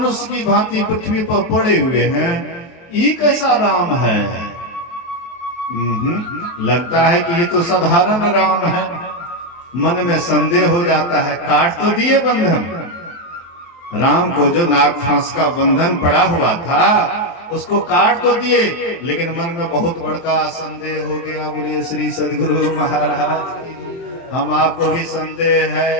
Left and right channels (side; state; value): right; late; 23 ms